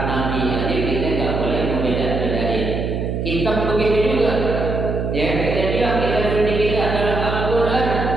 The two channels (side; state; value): right; noise; hum, 2 dB below the sound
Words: nabi. Jadi kita nggak boleh membeda-bedain. Kitab begitu juga. Ya, kita bilang kita suci kita adalah Al-Quran.